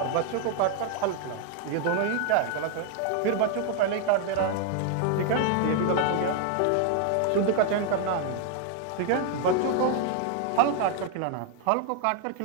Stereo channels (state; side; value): different; both; correlation 0.00